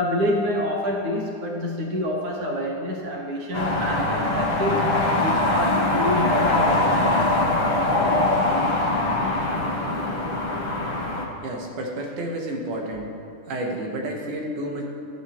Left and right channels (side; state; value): left; late; 10 ms